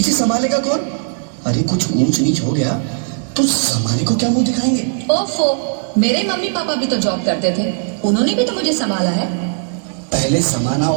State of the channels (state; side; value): silent; left; 68 dB below the other